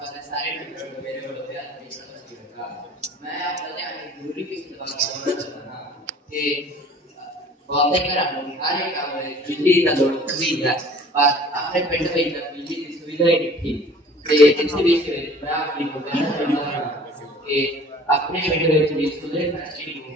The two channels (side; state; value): both; normal; correlation 0.49